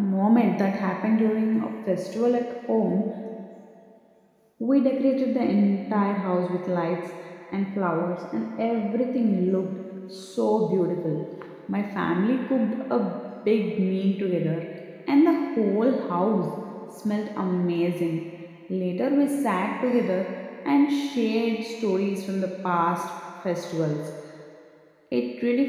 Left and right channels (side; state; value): both; identical; correlation 1.00